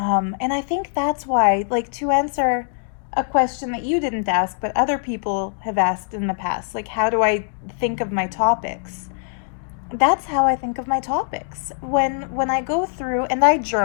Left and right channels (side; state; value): right; silent; digital silence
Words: I think that's why, like, to answer a question that you didn't ask, but other people have asked in the past, like, how do I think of my topics? That's how I think of my topics. When I go through and I